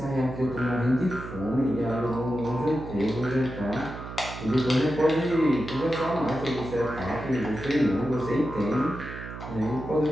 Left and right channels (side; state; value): right; noise; hum, 10 dB below the sound